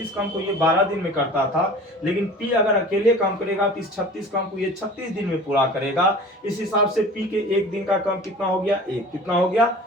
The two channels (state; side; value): normal; both; correlation 0.41